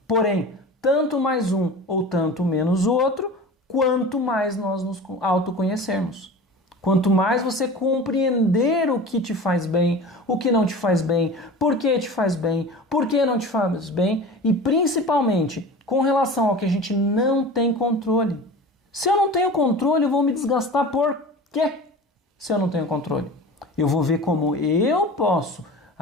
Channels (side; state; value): both; normal; correlation 0.35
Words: Porém, tanto mais um ou tanto menos o outro, quanto mais nós nos autoconhecermos. Quanto mais você compreender o que te faz bem, o que não te faz bem, por que te faz bem, por que não te faz bem e principalmente com relação ao que a gente não tem controle. Se eu não tenho controle, eu vou me desgastar por quê? Se eu não tenho controle. Eu vou ver como eu posso